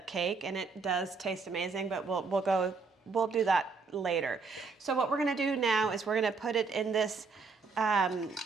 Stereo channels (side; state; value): left; quieter; 4.5 dB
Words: cake, and it does taste amazing, but we'll do that later. So what we're gonna do now is we're gonna put it in this